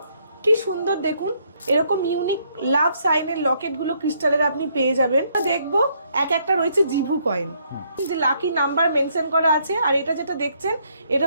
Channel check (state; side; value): inverted; both; correlation -0.71